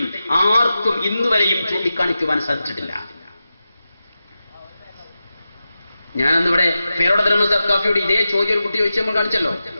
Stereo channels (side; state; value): both; inverted; correlation -0.92